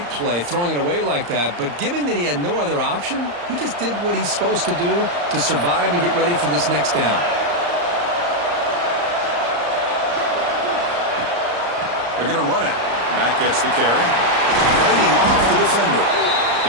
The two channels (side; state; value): left; late; 34 ms